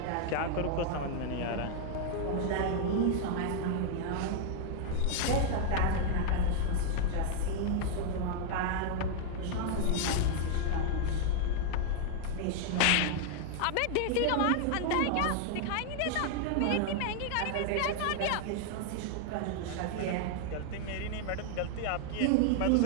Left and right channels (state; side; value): different; both; correlation 0.00